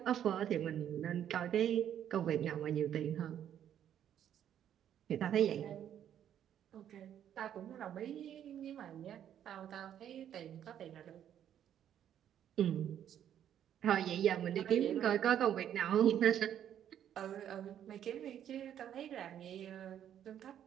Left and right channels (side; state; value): left; quieter; 10.1 dB